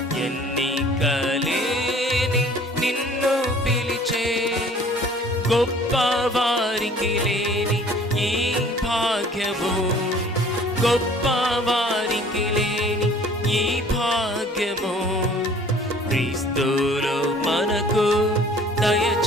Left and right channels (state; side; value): normal; both; correlation 0.52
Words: ఎన్నికలేని నిన్ను పిలిచే. గొప్ప వారికి లేని ఈ భాగ్యము, గొప్ప వారికి లేని ఈ భాగ్యము క్రీస్తులో మనకు